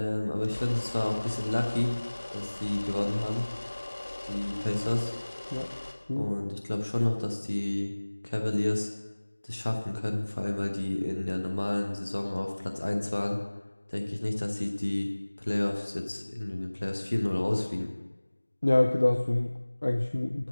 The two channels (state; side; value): inverted; both; correlation -1.00